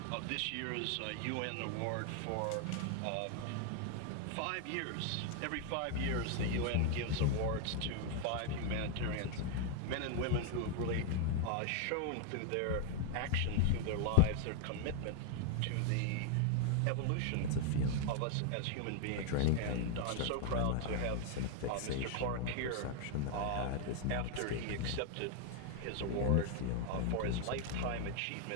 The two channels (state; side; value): different; both; correlation 0.00